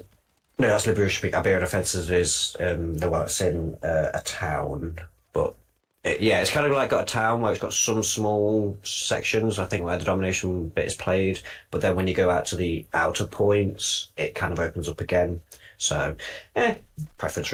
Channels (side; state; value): both; identical; correlation 1.00